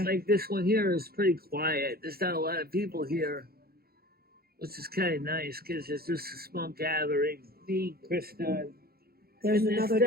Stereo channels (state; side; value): late; left; 0.44 ms